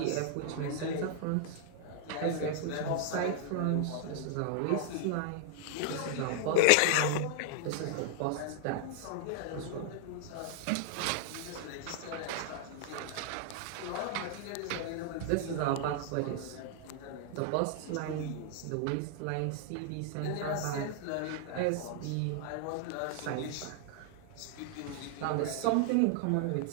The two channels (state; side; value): different; both; correlation 0.00